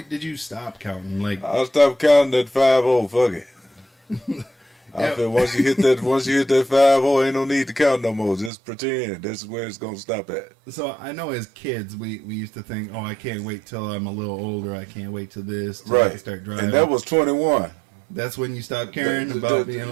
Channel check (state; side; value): drops out; left; at 8.5 s